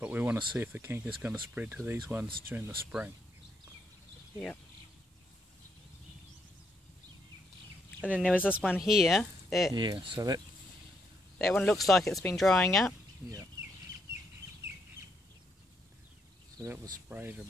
we want to see if the canker is going to spread to these ones during the spring. Yep. And then there was this one here. Yeah, so that one looks like it's been drying up. Yeah. So that was sprayed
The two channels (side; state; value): both; normal; correlation 0.76